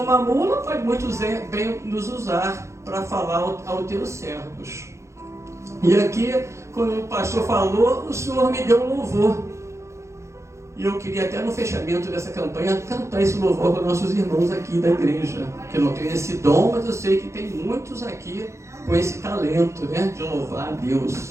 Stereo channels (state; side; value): late; left; 0.14 ms